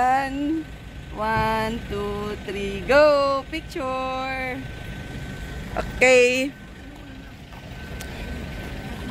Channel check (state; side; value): identical; both; correlation 1.00